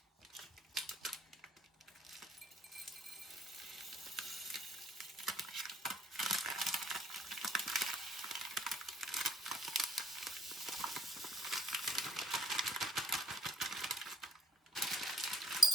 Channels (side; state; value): both; normal; correlation 0.68